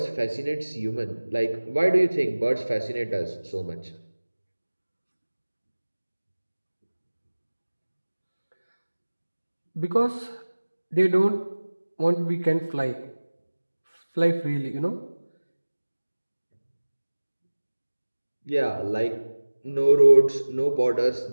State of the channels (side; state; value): both; inverted; correlation -1.00